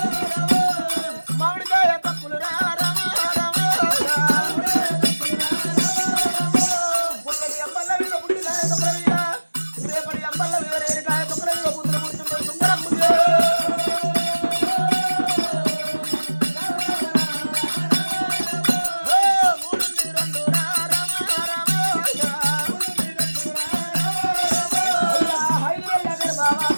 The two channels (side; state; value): both; inverted; correlation -1.00